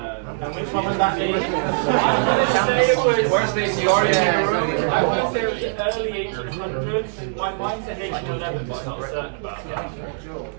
which one would that be? I'm going to say it was. Where's the historian in the room? I want to say it was the early 1800s. My mind says 1811, but I'm not certain about that.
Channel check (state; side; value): silent; left; digital silence